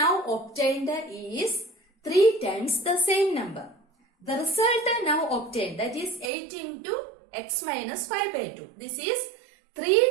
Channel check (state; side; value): drops out; left; at 6.3 s